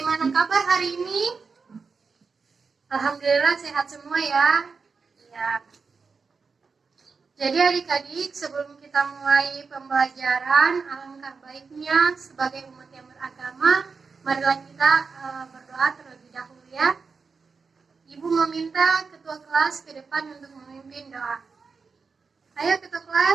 kabar hari ini? Alhamdulillah sehat semua ya. Ya. Jadi adik-adik, sebelum kita mulai pembelajaran, alangkah baiknya sebagai umat yang beragama, marilah kita berdoa terlebih dahulu ya. Ibu meminta ketua kelas ke depan untuk memimpin doa. Ayo ketua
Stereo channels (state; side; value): quieter; left; 4.9 dB